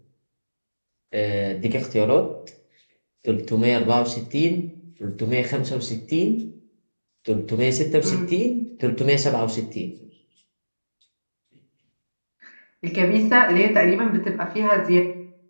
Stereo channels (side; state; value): both; inverted; correlation -1.00